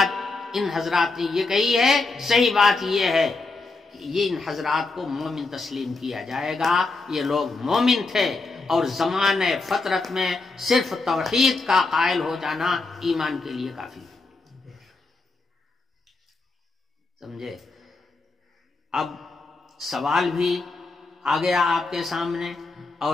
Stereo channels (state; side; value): quieter; right; 3.6 dB